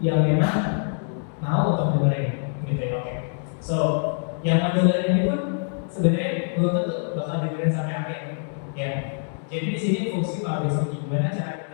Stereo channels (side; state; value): right; silent; digital silence